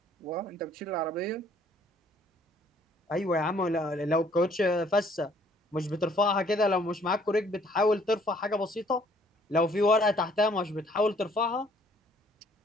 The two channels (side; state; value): both; normal; correlation 0.61